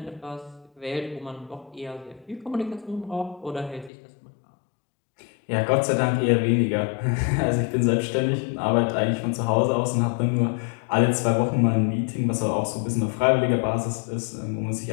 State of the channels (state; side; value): drops out; right; at 3.9 s